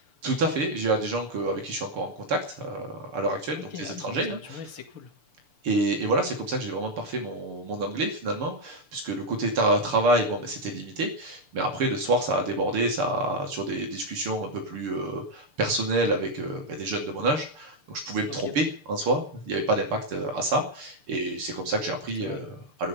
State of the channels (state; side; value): late; left; 6.8 ms